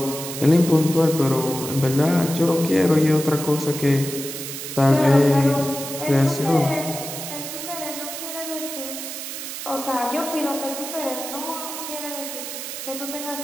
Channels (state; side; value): noise; right; hiss, 8 dB below the sound